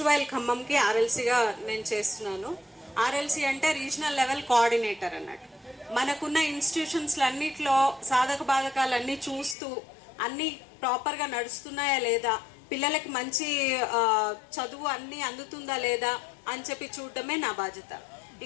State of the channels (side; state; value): right; drops out; at 9.6 s